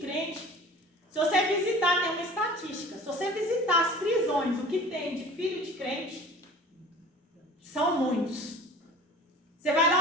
Se você visitar, tem uma estatística, se você visitar as prisões, o que tem de filho de crente, são muitos. Você vai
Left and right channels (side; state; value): both; normal; correlation 0.43